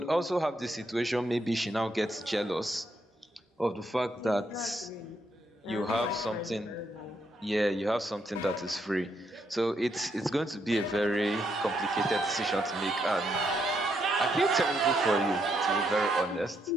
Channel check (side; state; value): both; normal; correlation 0.77